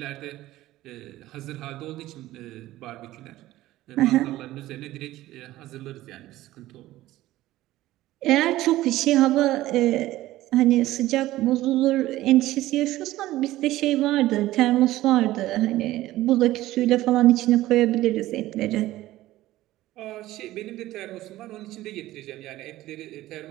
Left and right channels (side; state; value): left; quieter; 16.0 dB